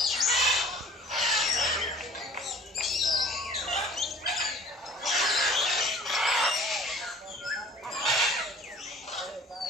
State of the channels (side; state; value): both; normal; correlation 0.48